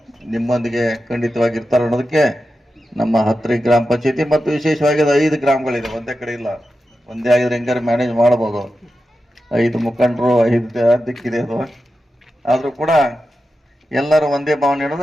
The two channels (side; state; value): both; normal; correlation 0.91